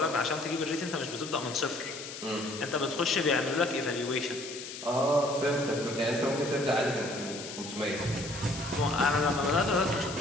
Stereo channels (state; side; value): noise; left; hiss, 10 dB below the sound